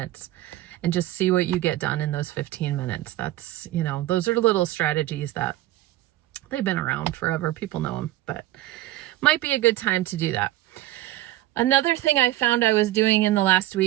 and just see what you get done in those 15 minutes. That's, those are little strategies that they've been around forever. People know them, but might be a good time to do that. Another thing I found I was doing in the last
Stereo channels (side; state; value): left; quieter; 15.7 dB